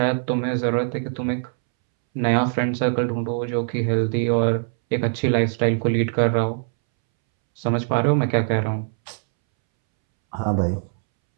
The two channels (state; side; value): silent; left; 64 dB below the other